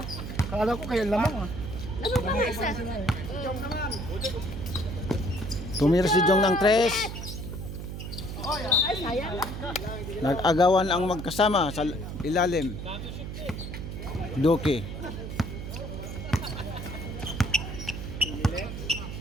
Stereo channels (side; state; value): right; noise; hum, 7 dB below the sound